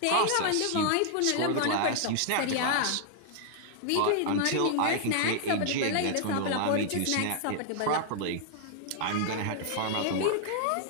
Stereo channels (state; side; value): different; both; correlation -0.01